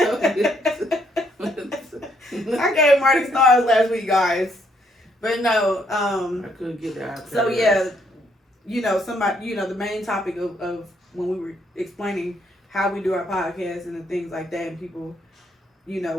you. I gave Marty stars last week, guys. But no, I couldn't get the iPad so right. yeah, the main topic of when we were explaining how we do our podcast and the things like that, and people,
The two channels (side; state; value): both; normal; correlation 0.71